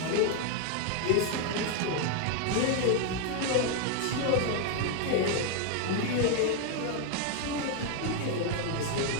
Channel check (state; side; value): different; both; correlation 0.00